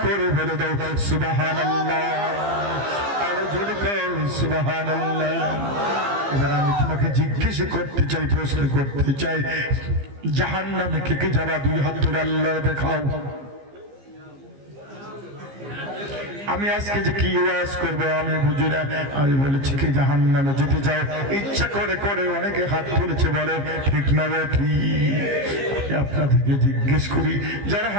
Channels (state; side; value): late; left; 15 ms